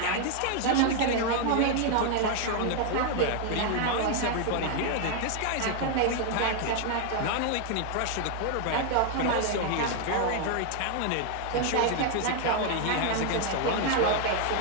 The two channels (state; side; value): different; both; correlation 0.00